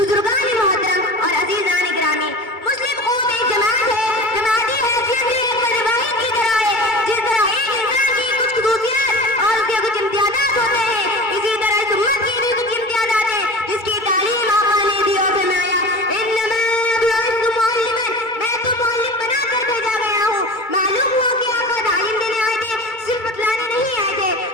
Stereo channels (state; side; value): late; right; 2.2 ms